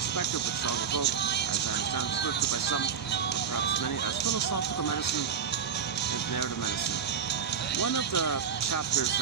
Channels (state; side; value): quieter; left; 7.3 dB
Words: which I'll go, as I understand, referred to by some, or perhaps many, as philosophical medicine and narrative medicine. One of the chapters